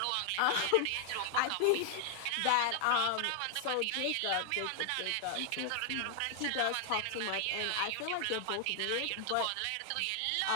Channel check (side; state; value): both; different; correlation 0.00